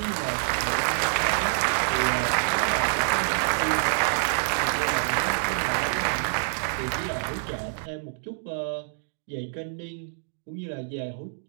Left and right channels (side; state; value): left; silent; digital silence